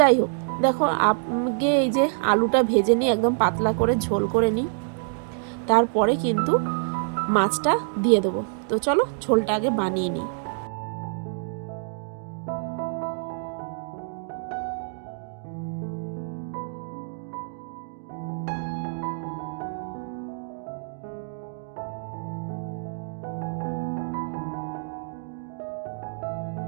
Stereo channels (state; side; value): silent; left; digital silence